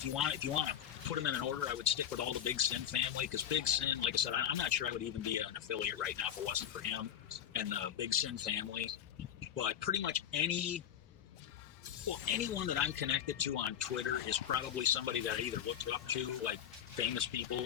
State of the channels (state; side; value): quieter; right; 9.6 dB